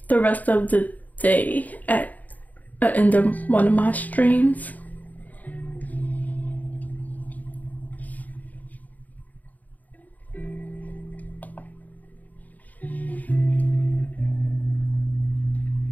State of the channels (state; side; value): late; right; 0.079 ms